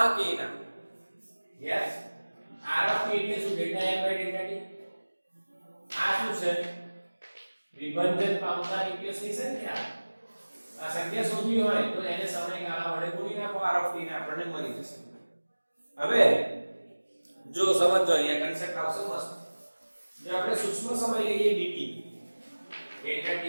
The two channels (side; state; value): both; inverted; correlation -1.00